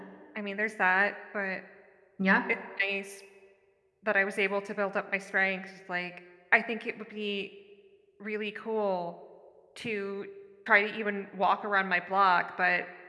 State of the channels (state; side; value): identical; both; correlation 1.00